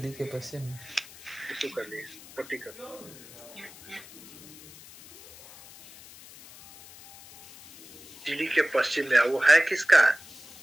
के पश्चिम में। इसको कर लिए, पट्टी कर। चिली के पश्चिम में वो है किसका?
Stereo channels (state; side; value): noise; left; hiss, 19 dB below the sound